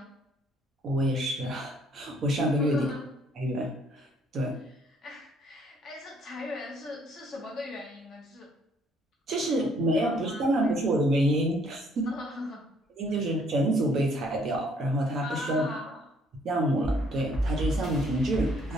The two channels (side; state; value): both; normal; correlation 0.64